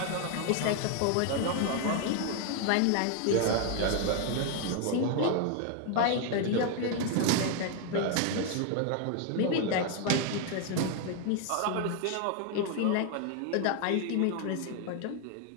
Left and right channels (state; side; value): different; both; correlation 0.01